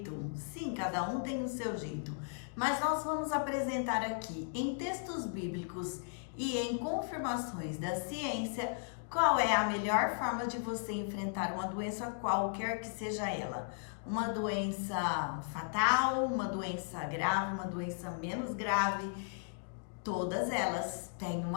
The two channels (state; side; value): silent; right; digital silence